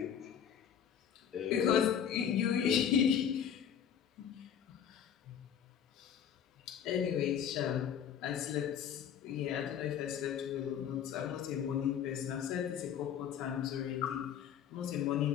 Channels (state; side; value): quieter; right; 8.7 dB